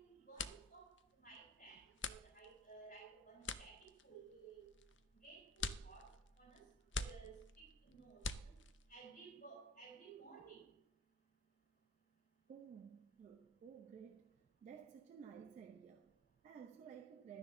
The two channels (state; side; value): normal; both; correlation 0.40